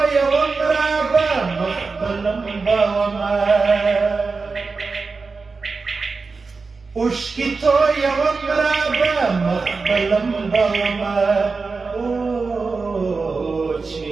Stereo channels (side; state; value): left; quieter; 4.4 dB